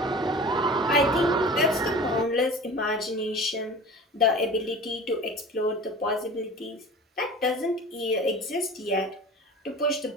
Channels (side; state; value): both; normal; correlation 0.39